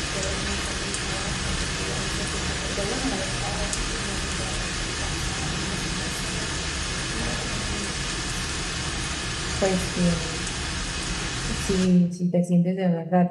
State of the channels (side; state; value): both; identical; correlation 1.00